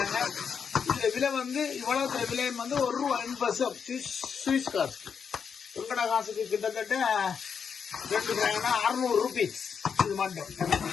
இதுல விலை வந்து இவ்வளவு விலை வந்து ₹1.50 சுவிஸ் காசு. உங்கட காசுக்கு கிட்டத்தட்ட 2 கிராம்னா ₹600. இது மட்டும்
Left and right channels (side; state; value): right; quieter; 6.6 dB